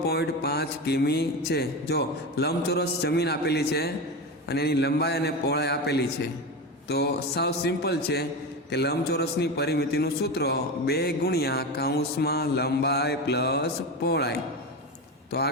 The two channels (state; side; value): normal; both; correlation 0.21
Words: કિમી છે। જો લંબચોરસ જમીન આપેલી છે અને એની લંબાઈ અને પહોળાઈ આપેલી છે, તો સાવ સિમ્પલ છે કે લંબચોરસની પરિમિતિનું સૂત્ર 2 ગુણ્યા કૌંસમાં લંબાઈ પ્લસ પહોળાઈ। તો